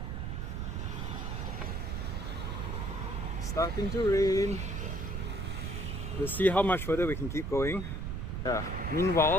Starting to rain. We'll see how much further we can keep going. Yeah.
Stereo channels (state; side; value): noise; right; rumble, 3 dB below the sound